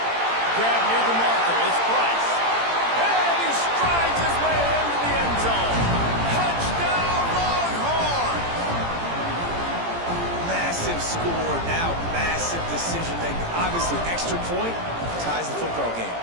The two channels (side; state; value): left; late; 18 ms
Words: near the marker. It's Price. And he strides his way into the end zone. Touchdown, Longhorn! Massive score. Now massive decision making. Obviously, extra point ties the football game.